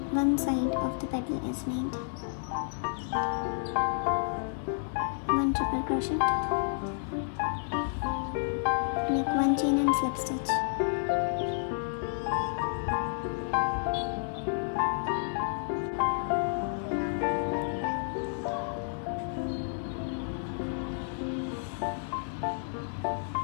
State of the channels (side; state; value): right; silent; digital silence